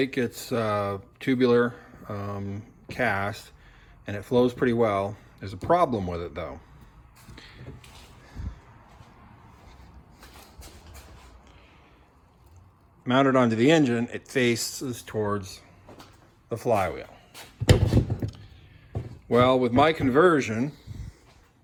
It's tubular cast and it flows pretty well. There's a problem with it though. Mounted onto the engine, it faces towards the flywheel. Well, with my conversion,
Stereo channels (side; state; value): both; identical; correlation 1.00